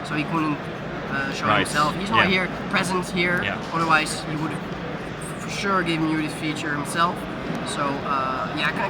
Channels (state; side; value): identical; both; correlation 1.00